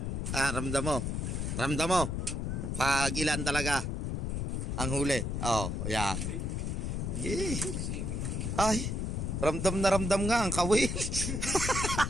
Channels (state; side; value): noise; left; rumble, 2 dB below the sound